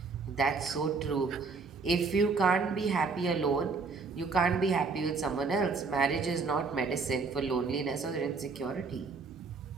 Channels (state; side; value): quieter; left; 4.5 dB